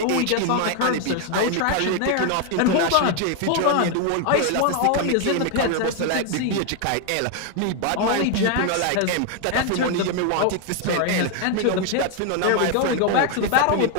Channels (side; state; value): both; different; correlation 0.01